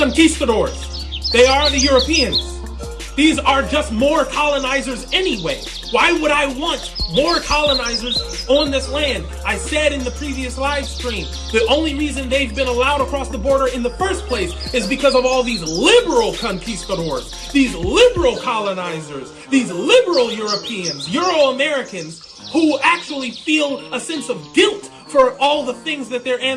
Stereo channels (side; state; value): both; identical; correlation 1.00